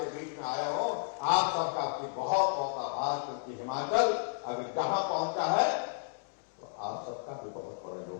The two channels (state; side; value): silent; right; digital silence